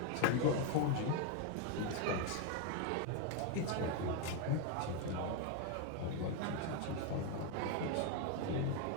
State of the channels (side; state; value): both; different; correlation 0.01